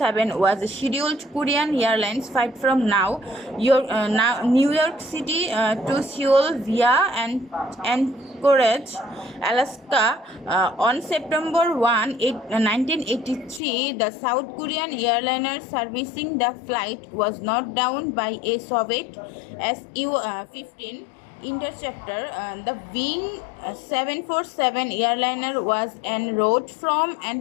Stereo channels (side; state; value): right; drops out; at 13.6 s